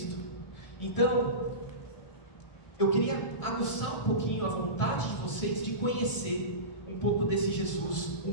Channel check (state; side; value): late; right; 1.7 ms